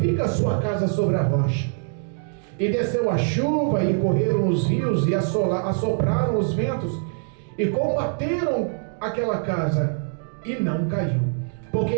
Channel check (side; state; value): left; silent; 58 dB below the other